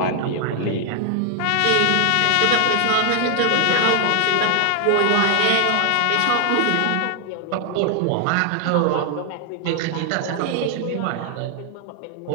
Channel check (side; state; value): both; different; correlation 0.00